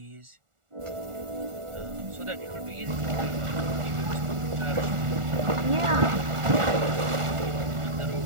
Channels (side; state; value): left; late; 1.4 ms